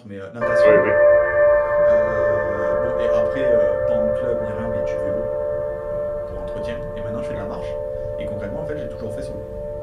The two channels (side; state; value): both; identical; correlation 1.00